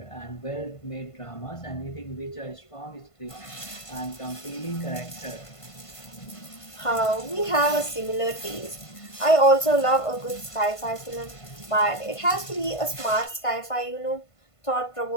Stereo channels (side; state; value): right; late; 1.5 ms